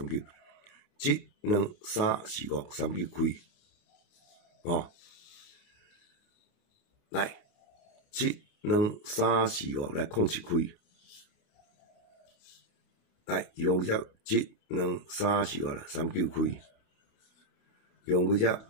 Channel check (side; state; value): right; late; 29 ms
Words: 2、3、4、5、39开，哦，来7、2、3、4、5来07开，来用只1、2、3、4、5啦39开，用只1、